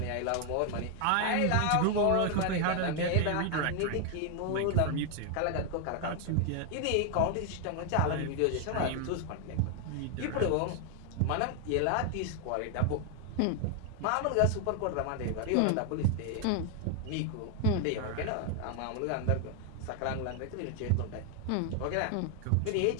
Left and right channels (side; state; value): both; different; correlation 0.00